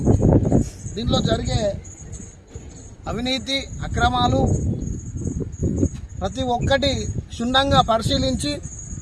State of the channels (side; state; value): both; identical; correlation 1.00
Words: దీంట్లో జరిగే అవినీతి అక్రమాలు ప్రతి ఒక్కటి క్షుణ్ణంగా పరిశీలించి